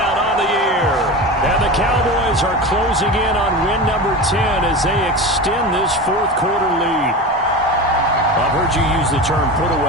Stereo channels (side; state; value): both; normal; correlation 0.27